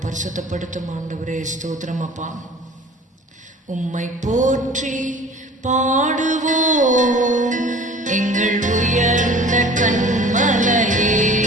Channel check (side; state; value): both; normal; correlation 0.44